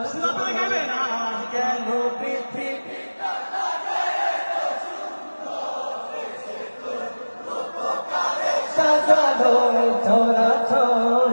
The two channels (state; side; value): inverted; both; correlation -1.00